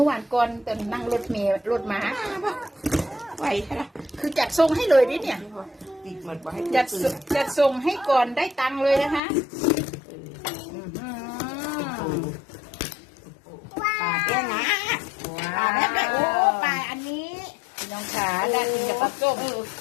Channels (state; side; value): drops out; right; at 9.2 s